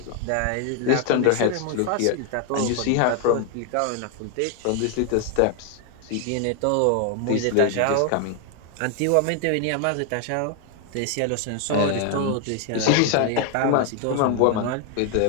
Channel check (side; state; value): both; different; correlation 0.00